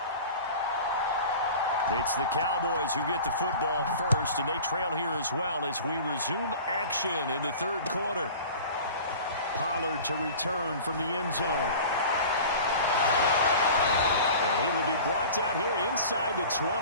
It's the Cowboys who get the football first, and they trail here as well as we resume action in the third quarter. Pollard to return from the end zone. And he will be brought down here inside the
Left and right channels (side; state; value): both; inverted; correlation -0.40